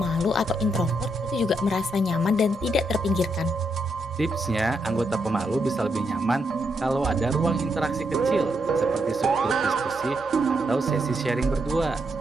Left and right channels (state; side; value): normal; both; correlation 0.80